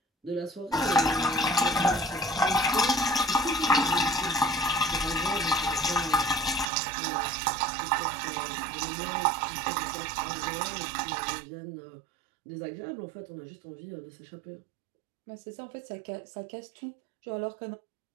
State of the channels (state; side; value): drops out; left; at 6.7 s